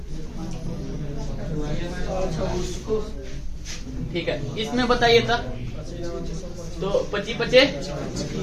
ठीक है, इसमें बताइए था तो 25 बचे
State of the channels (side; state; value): both; identical; correlation 1.00